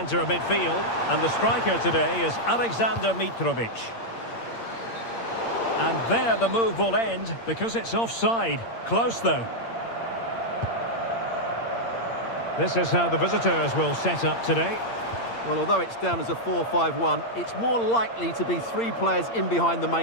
of midfield. And the striker today is Alexander Mitrovic. And there the move will end because it's offside. Close though. This is how the visitors will set up today. Well, although it's down as a 4-5-1, it's more likely to be three players in behind the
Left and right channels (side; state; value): right; late; 8.7 ms